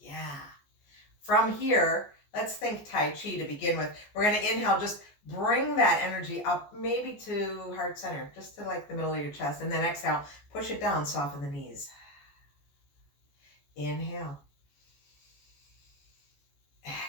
From here, let's think Tai Chi to begin with. We're going to inhale, just bring that energy up maybe to heart center, just to like the middle of your chest. And then exhale, push it down, soften the knees. Inhale.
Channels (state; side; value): late; right; 14 ms